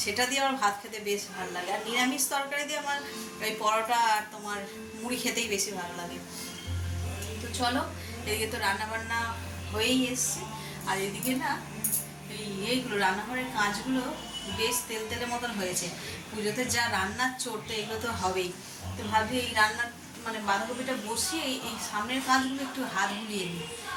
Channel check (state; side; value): identical; both; correlation 1.00